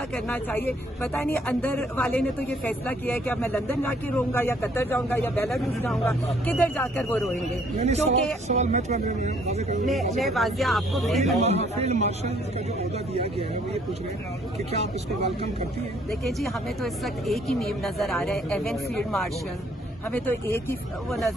करना चाहिए। पता नहीं अंदर वाले ने तो ये फैसला किया है कि अब मैं लंदन जाके रोऊंगा या कतर जाऊंगा या बेलारूस जाऊंगा, किधर जाकर वो रोएंगे? क्योंकि मैं वाजिया आपको फील्ड मार्शल का जो ओहदा दिया गया है वो ये पूछ रहे हैं कि क्या आप इसको वेलकम करती हैं? देखिए जी हमें तो इस वक्त एक ही नेम नजर आ रहा है, एवन फील्ड मार्शल। हमें तो एक ही वो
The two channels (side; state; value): both; normal; correlation 0.63